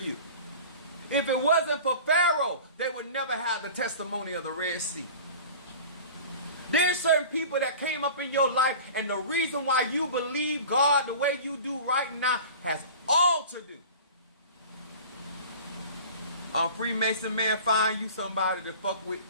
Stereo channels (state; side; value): inverted; both; correlation -0.39